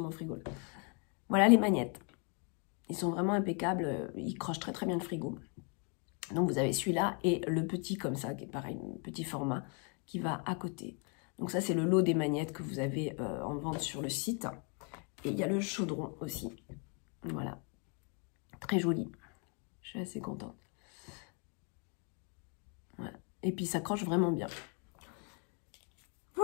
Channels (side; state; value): right; quieter; 36.9 dB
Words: frigo là. Voilà les magnettes. Ils sont vraiment impeccables, ils crochent très très bien le frigo. Donc vous avez celui-là et le petit comme ça, qui est pareil, petit format, qui va à côté. Donc ça c'est le lot des magnettes que vous avez en vente sur le site. Et il y a le chaudron aussi. Voilà. Très joli. Je suis assez contente. Voilà. Et puis ça croche vraiment bien.